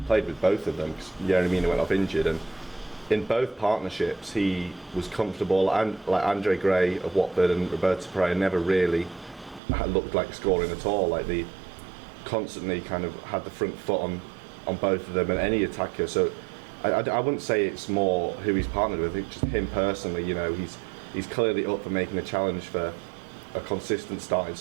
with both of them, because Yerry Mina went off injured, and in both partnerships he was comfortable, and like Andre Gray of Watford and Roberto Pereira never really looked like scoring at all. Like they constantly kind of had the front foot on both of them and any attacker. So I wouldn't say it's more who he's partnered with. It's just him personally. You know, he's clearly up for making a challenge for a consistent starting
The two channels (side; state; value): left; drops out; at 9.6 s